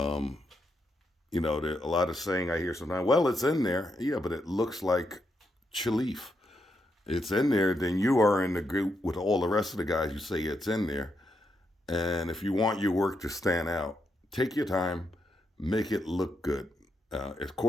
you know, there a lot of saying I hear sometimes, well, it's in there. Yeah, but it looks like Chalif. It's in there, then you are in the group with all the rest of the guys who say it's in there. And if you want your work to stand out, take your time, make it look good. Of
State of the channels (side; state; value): both; normal; correlation 0.81